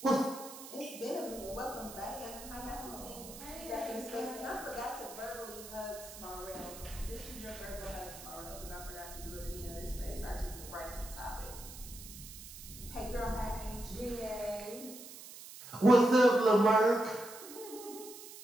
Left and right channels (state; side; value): noise; right; hiss, 14 dB below the sound